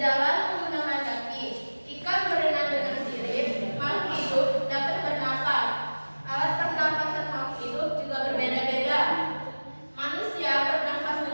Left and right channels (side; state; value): both; inverted; correlation -1.00